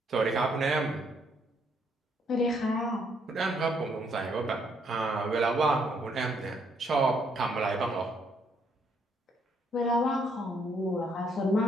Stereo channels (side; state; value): both; normal; correlation 0.71